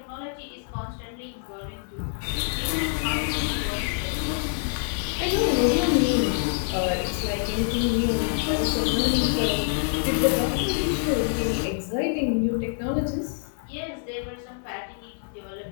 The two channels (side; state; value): right; silent; digital silence